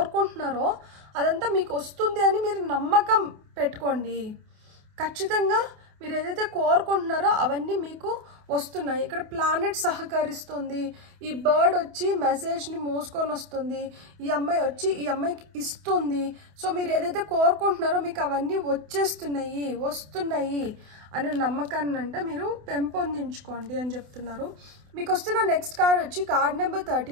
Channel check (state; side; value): late; left; 28 ms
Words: అదంతా మీకు వస్తుంది అని మీరు నమ్మకం పెట్టుకోండి. ఖచ్చితంగా మీరు ఏదైతే కోరుకుంటున్నారో అవన్నీ మీకు వస్తున్నాయి. ఇక్కడ ప్లానెట్ సహకరిస్తుంది, ఈ బర్డ్ వచ్చి మెసేజ్ని మోసుకొని వస్తుంది, ఈ అమ్మాయి వచ్చి ఈ అమ్మాయికి ఇస్తుంది. సో మీరు ఏదైతే కోరుకుంటున్నారో మీకు అవన్నీ వస్తున్నాయి అనే నమ్మకాన్ని అంటే మీరు పెంపొందించుకోండి అని చెప్తున్నారు. మీకు వస్తున్న నెక్స్ట్ కార్డ్ వచ్చి card number